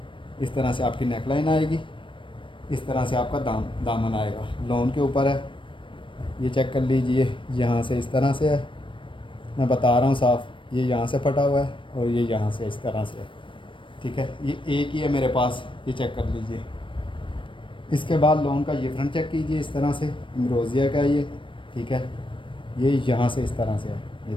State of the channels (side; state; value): right; late; 0.25 ms